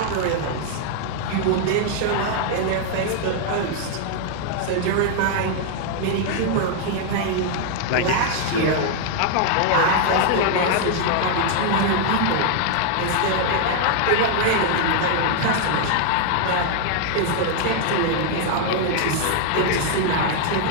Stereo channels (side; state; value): both; different; correlation 0.00